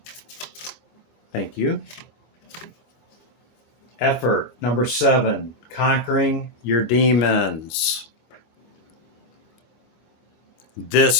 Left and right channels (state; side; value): late; right; 25 ms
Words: Thank you. Effort, number 7, conquering your demons.